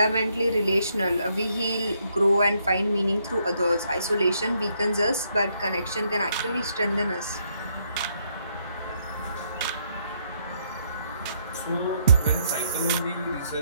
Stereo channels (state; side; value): inverted; both; correlation -0.73